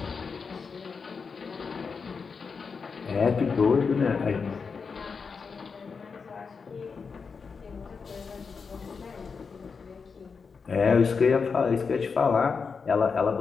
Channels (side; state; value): right; quieter; 5.3 dB